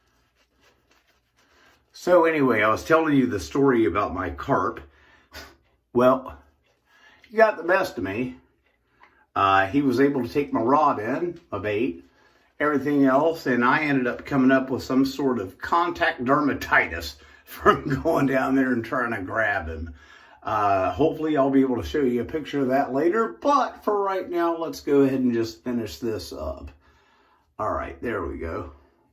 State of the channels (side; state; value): both; identical; correlation 1.00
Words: So anyway, I was telling you the story about my carp. Well, he got the best of me. He was able to take my rod in, my bait, everything else, and I ended up coming up with some sort of contact dermatitis from going down there and trying to grab him. Hopefully I'll be able to show you a picture of that later, but for right now, let's go ahead and just finish this up. All right, there we go.